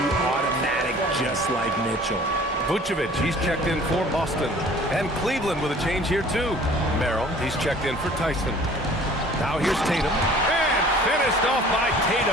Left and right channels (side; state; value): both; normal; correlation 0.50